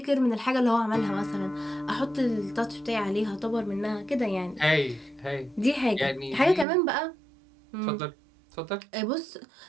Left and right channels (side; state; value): left; drops out; at 6.7 s